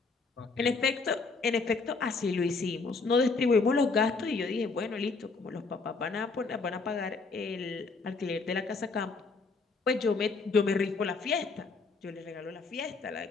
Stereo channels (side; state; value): right; quieter; 4.2 dB